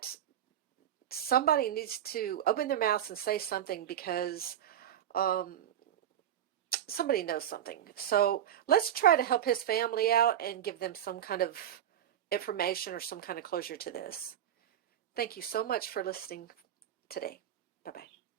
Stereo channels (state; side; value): quieter; left; 10.5 dB